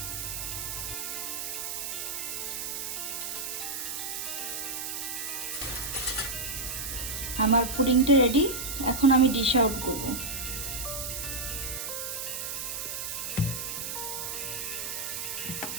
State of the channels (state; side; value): noise; right; hiss, 4 dB below the sound